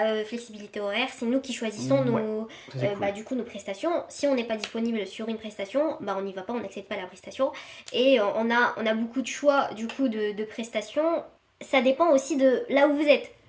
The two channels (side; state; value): both; identical; correlation 1.00